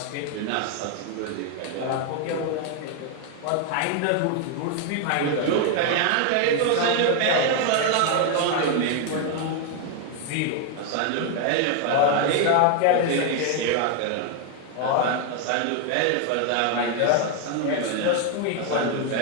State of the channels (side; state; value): both; different; correlation 0.01